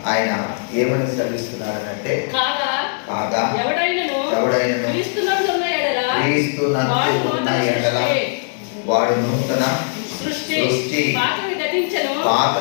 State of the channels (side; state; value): right; silent; digital silence